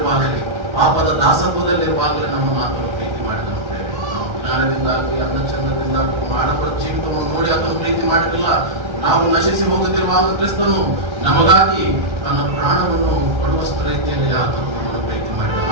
ಪಾಪದ ದಾಸತ್ವದಲ್ಲಿರುವಾಗಲೇ ನಮ್ಮ ಮಾತನ್ನು ಪ್ರೀತಿ ಮಾಡಿದ ಅಂತೇಳಿ ನಾವು ಜ್ಞಾನದಿಂದಾಗಲಿ ಅನ್ನ ಚಂದದಿಂದಾಗಲಿ ಆಡಂಬರ ಜೀವಿತವನ್ನು ನೋಡಿ ಅದನ್ನು ಪ್ರೀತಿ ಮಾಡಿರಲಿಲ್ಲ. ನಾವು ನಶಿಸಿ ಹೋಗುತ್ತಿರುವಾಗ ಕ್ರಿಸ್ತನು ನಮಗಾಗಿ ತನ್ನ ಪ್ರಾಣವನ್ನು ಕೊಡುವಷ್ಟು ರೀತಿಯಲ್ಲಿ ಆತನು ಪ್ರೀತಿ ಮಾಡಿದ.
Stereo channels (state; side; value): late; left; 1.4 ms